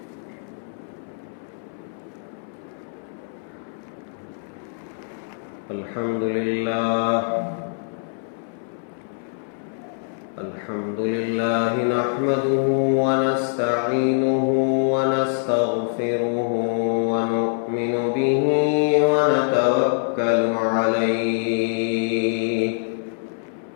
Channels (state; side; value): silent; right; 62 dB below the other